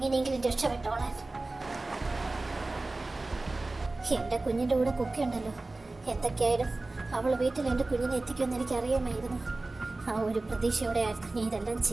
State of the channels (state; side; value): quieter; left; 3.1 dB